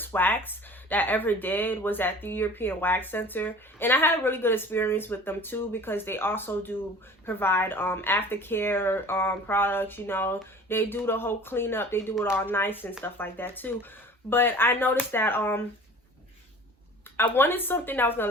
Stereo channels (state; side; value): normal; both; correlation 0.44